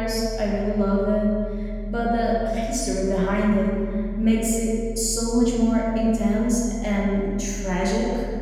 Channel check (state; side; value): identical; both; correlation 1.00